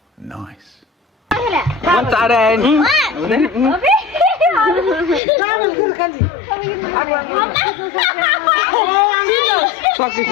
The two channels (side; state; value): right; drops out; at 5.2 s